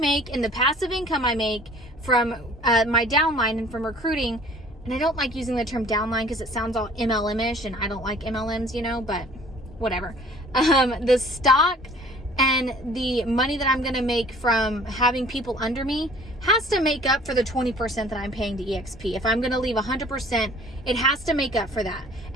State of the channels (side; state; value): both; normal; correlation 0.52